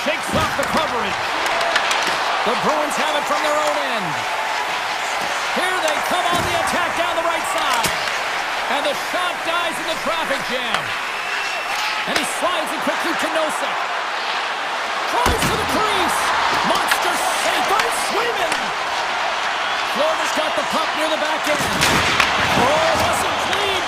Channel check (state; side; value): identical; both; correlation 1.00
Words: Shakes off the coverage. The Bruins have it from their own end. Here they come on the attack down the right side. And the shot dies in the traffic jam. And he slides it quickly to Nosek. Tries to the crease. Monster save by Swayman. Florida's got the puck near the back end. Oh, it wasn't clean,